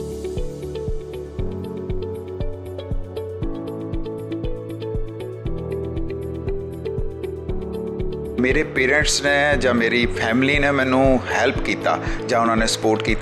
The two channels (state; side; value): identical; both; correlation 1.00